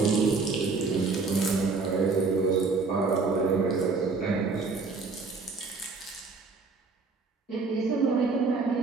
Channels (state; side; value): quieter; left; 4.2 dB